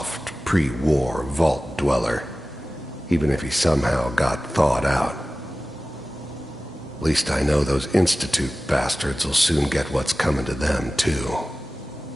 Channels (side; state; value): both; normal; correlation 0.96